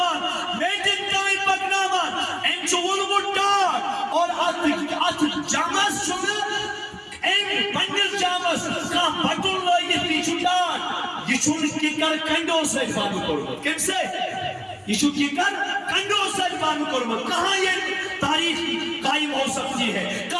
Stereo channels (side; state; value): both; identical; correlation 1.00